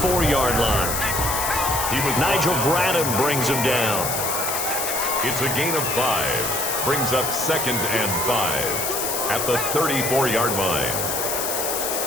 line. Nigel Bradham brings him down. It's a gain of 5. Brings up 2nd and 5 at the 34-yard line.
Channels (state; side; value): noise; left; hiss, 1 dB below the sound